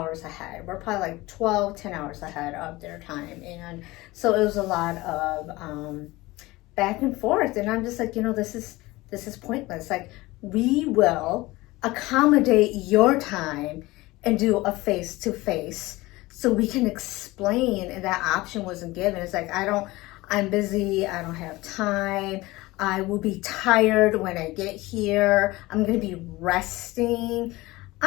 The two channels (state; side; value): quieter; right; 20.2 dB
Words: ahead. We're probably like 10 hours ahead of their time. And so it was a lot of back and forth. And I'm just like, you know, this is pointless. Like, we will accommodate your time and do a face-to-face so we can explain. And that option wasn't given. It's like, I'm busy. I don't have time. I will be tired when I get here. I'm going to be resting.